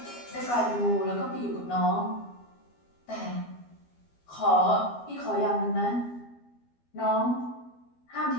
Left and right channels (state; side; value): late; right; 12 ms